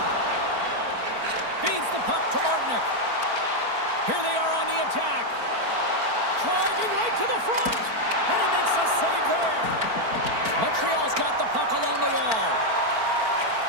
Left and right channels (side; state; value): left; late; 4.4 ms